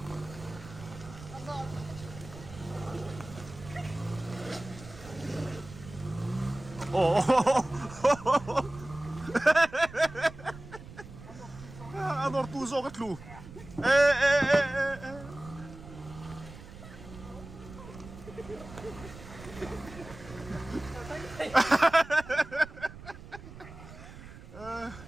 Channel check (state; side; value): noise; right; rumble, 16 dB below the sound